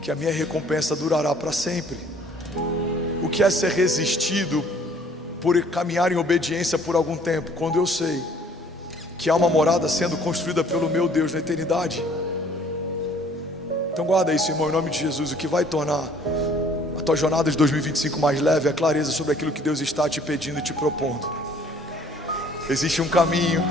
que a minha recompensa durará para sempre. O que é ser resistido por caminhar em obediência por algum tempo, quando eu sei que há uma morada sendo construída pelo meu Deus na eternidade. Então guarda isso, irmão, em nome de Jesus. O que vai tornar a tua jornada de 2025 mais leve é a clareza sobre aquilo que Deus está te pedindo e te propondo. Existe um caminho,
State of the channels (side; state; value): both; normal; correlation 0.57